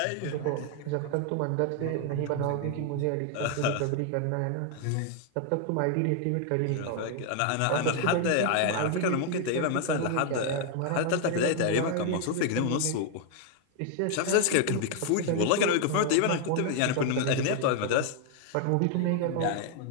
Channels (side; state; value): both; different; correlation 0.00